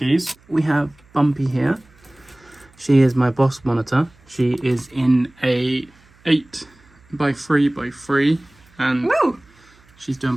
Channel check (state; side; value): noise; right; hum, 30 dB below the sound